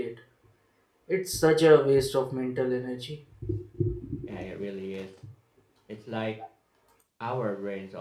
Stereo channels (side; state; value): both; identical; correlation 1.00